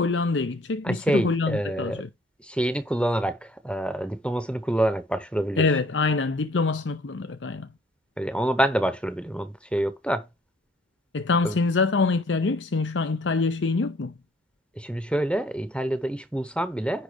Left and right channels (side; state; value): both; normal; correlation 0.60